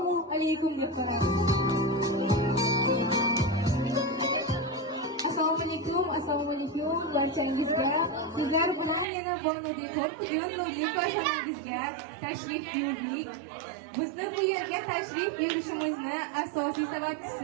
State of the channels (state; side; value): drops out; left; at 9.1 s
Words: alaykum deb so'rayman. Assalomu alaykum barchangizga. Sizlar bilan yana Borno-Dekor bugun ko'rsanangizga tashrif buyurdik. Bizni bu yerga tashrif buyurishimizni asosiy